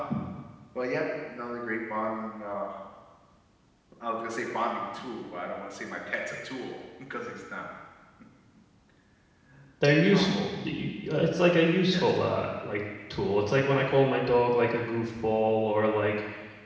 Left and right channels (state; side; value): identical; both; correlation 1.00